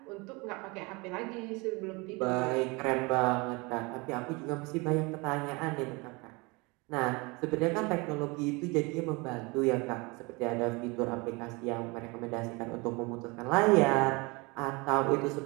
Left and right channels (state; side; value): quieter; left; 26.6 dB